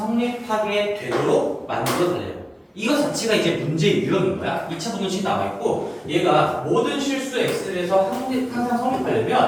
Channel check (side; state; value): both; identical; correlation 1.00